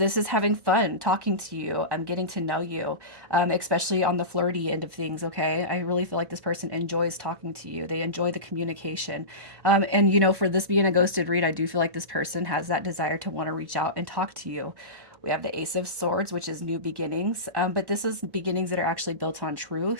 is having fun talking to you. I'm getting to know you, especially on the flirty end of things. Okay, I really feel like this person enjoys talking to you. They enjoy the communication. And, for this being a ghosted read, I do feel like this person has that desire to want to reach out and talk to you. We have the Ace of Swords, which is new beginnings. But this is beginnings that are actually built on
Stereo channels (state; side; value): late; left; 1.1 ms